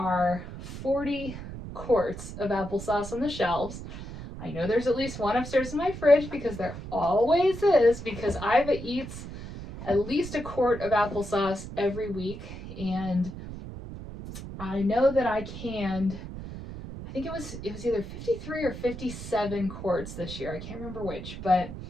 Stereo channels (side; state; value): right; noise; rumble, 10 dB below the sound